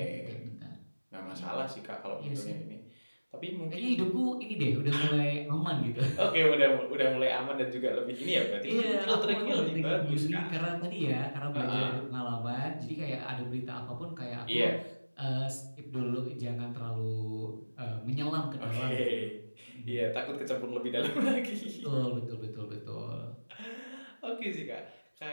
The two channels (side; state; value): both; inverted; correlation -1.00